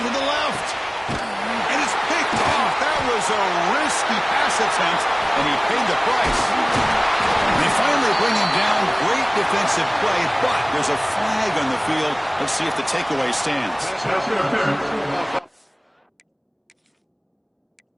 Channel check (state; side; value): identical; both; correlation 1.00